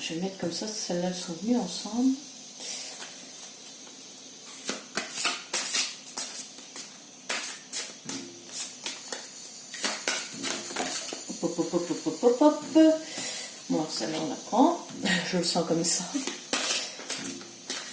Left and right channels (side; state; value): both; identical; correlation 1.00